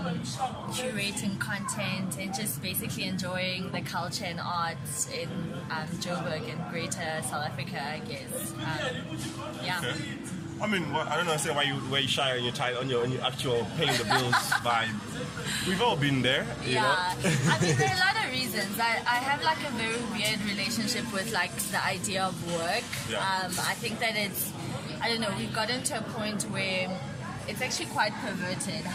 curating content, and just basically enjoying the culture and arts in Joburg and Greater South Africa, I guess. Yeah. Okay. I don't know. Say why you shy on your title, on your actual paying the bills vibe. We've all been there, you know. There are a lot of reasons. I have like a very weird relationship with like the idea of work. Yeah. I think that we've gotten to a point where it's actually quite perverted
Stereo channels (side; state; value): both; identical; correlation 1.00